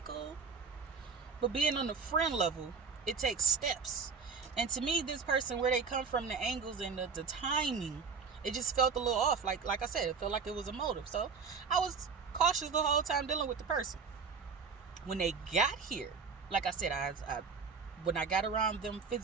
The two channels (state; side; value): quieter; left; 5.4 dB